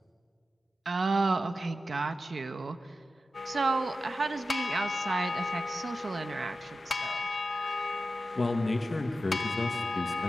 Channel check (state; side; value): normal; both; correlation 0.92